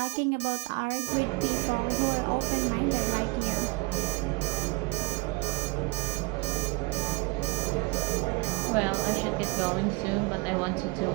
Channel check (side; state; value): left; quieter; 23.1 dB